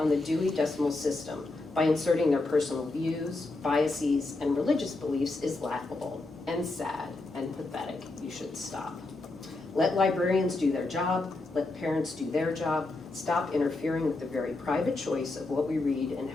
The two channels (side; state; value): right; quieter; 3.2 dB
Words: the Dewey Decimal System by inserting their personal views, biases, and religious beliefs is laughable and sad and pathetic. You should stop. Let librarians do their job, let parents do their job, stop interfering with the very private choice of what we read and